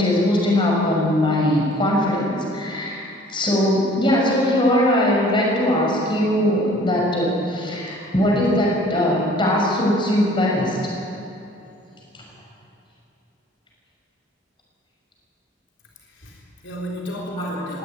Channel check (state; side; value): normal; both; correlation 0.53